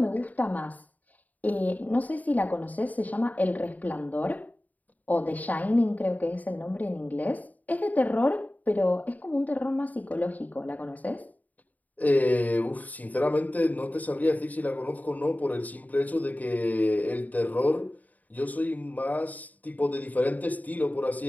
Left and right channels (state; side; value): late; right; 0.077 ms